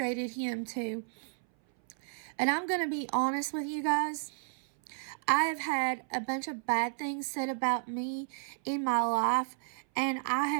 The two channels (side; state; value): left; silent; 56 dB below the other